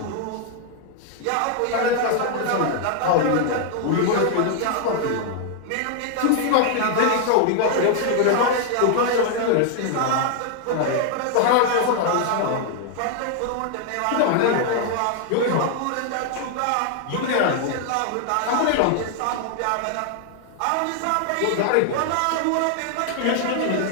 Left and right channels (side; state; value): both; different; correlation 0.00